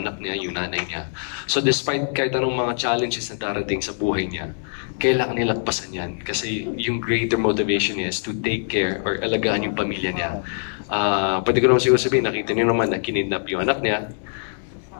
niya, yung nanay niya. So despite kahit anong mga challenges na darating sa buhay niya, kailangan nilagpasan yan. Kasi yung greater motivation niya is to take care or alagaan yung pamilya niya. Pwede ko naman siguro sabihin, nakita niyo naman na kinidnap yung anak niya.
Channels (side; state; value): right; silent; 63 dB below the other